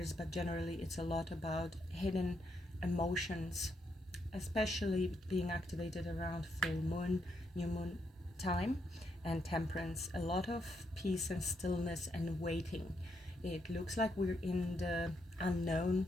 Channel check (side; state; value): both; normal; correlation 0.78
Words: but generally it's a lot about hidden emotions, especially being activated around full moon, new moon time, and temperance. A lot of peace and stillness and waiting. It looks like we're in the unknown,